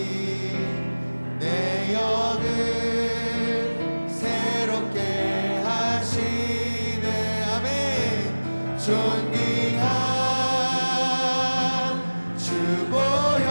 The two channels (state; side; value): inverted; both; correlation -1.00